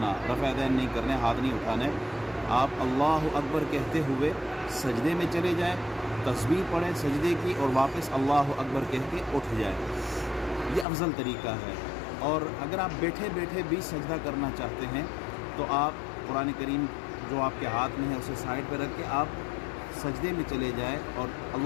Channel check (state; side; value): drops out; right; at 10.9 s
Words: رفع یدین نہیں کرنے، ہاتھ نہیں اٹھانے. آپ اللہ اکبر کہتے ہوئے سجدے میں چلے جائیں، تسبیح پڑھیں سجدے کی اور واپس اللہ اکبر کہہ کے اٹھ جائیں. یہ افضل طریقہ ہے. اور اگر آپ بیٹھے بیٹھے بھی سجدہ کرنا چاہتے ہیں تو آپ قرآن کریم جو آپ کے ہاتھ میں ہے اسے سائڈ پہ رکھ کے آپ سجدے میں چلے جائیں اور